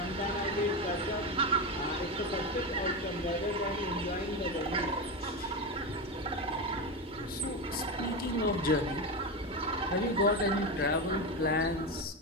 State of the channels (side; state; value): both; normal; correlation 0.16